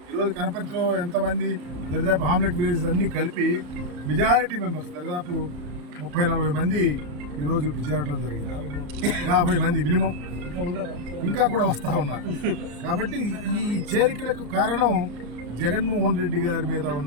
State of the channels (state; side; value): late; left; 34 ms